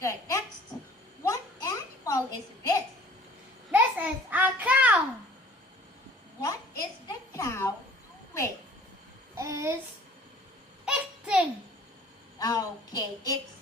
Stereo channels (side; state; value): both; normal; correlation 0.51